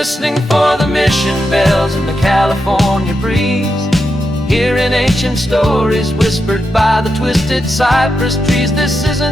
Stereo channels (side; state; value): both; normal; correlation 0.86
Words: for the mission bells in the California breeze, hearing ancient stories whispered by the twisted cypress trees. This